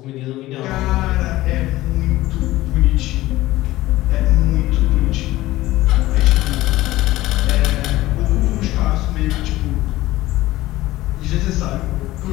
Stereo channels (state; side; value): quieter; right; 17.0 dB